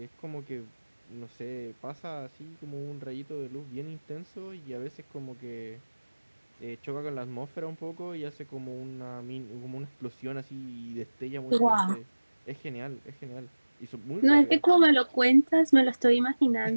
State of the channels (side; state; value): both; inverted; correlation -1.00